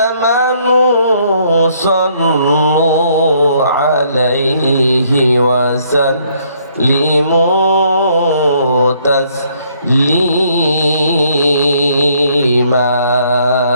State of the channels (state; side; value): inverted; both; correlation -0.66